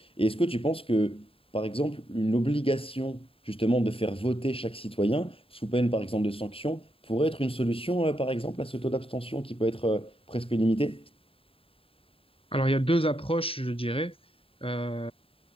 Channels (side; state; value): right; late; 0.27 ms